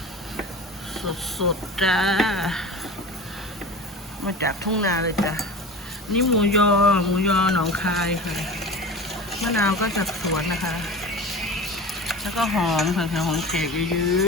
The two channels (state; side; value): normal; both; correlation 0.34